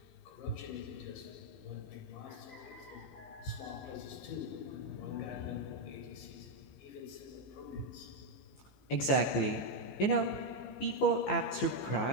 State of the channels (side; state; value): right; late; 15 ms